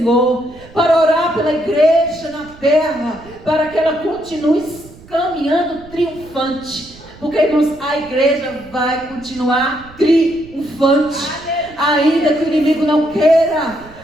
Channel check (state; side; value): noise; right; rumble, 22 dB below the sound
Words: Para orar pela igreja na terra, para que ela continue caminhando triunfante. Porque, irmãos, a igreja vai continuar triunfante. Ainda que o inimigo não queira,